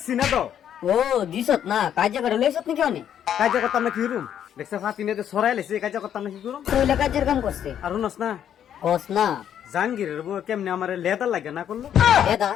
না তো ও দিছত না কাজে করে লইছত নাকি অনে? কাজে করতাম না কি রুম দেখছে ফাতিনে তো সরাই লাইছে কাজে করতাম না কি করুম তুই কাজের কাম করছে আর শুনস না কস না জাহাঙ্গীরের বউ কেমনে আমার লেদা লাগে না করলো লেদা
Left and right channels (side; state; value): right; quieter; 9.7 dB